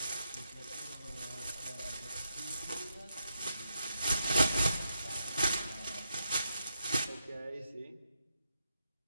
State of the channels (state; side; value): inverted; both; correlation -0.82